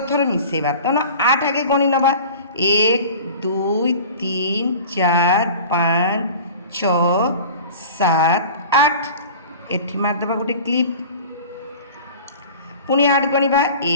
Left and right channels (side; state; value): both; inverted; correlation -0.40